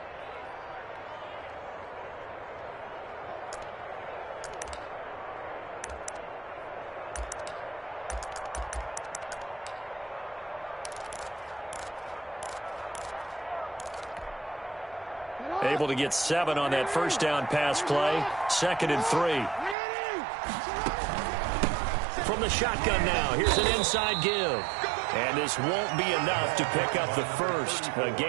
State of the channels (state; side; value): drops out; left; at 19.8 s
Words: Able to get 7 on that first down pass play. 2nd and 3. From the shotgun now, here's an inside give. And this won't be enough to pick up the first. A